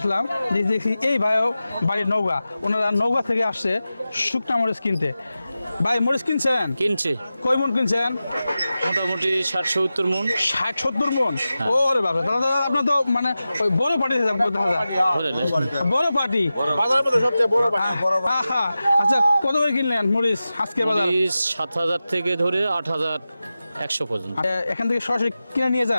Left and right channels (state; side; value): inverted; both; correlation -0.94